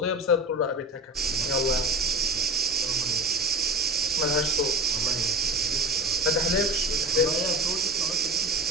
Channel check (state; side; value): normal; both; correlation 0.33